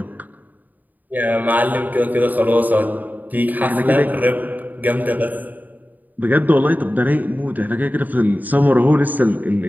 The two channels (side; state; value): left; late; 0.083 ms